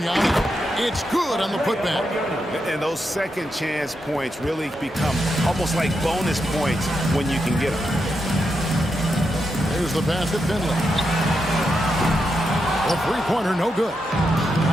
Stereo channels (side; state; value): both; normal; correlation 0.85